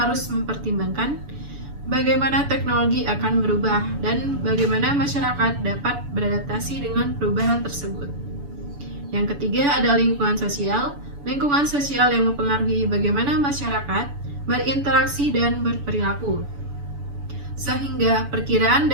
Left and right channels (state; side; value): late; left; 7.0 ms